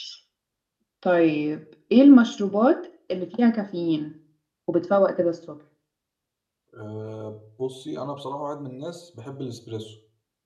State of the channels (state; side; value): identical; both; correlation 1.00